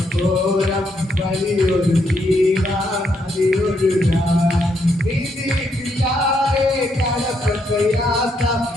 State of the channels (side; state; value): both; normal; correlation 0.76